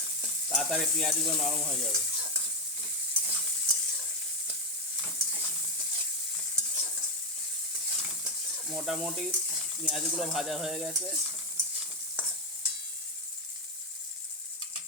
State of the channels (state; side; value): normal; both; correlation 0.07